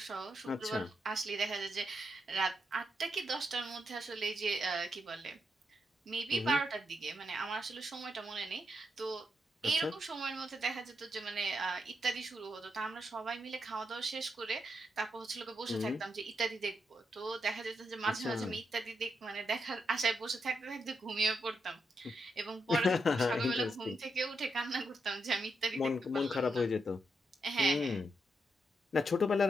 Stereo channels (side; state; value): both; normal; correlation 0.82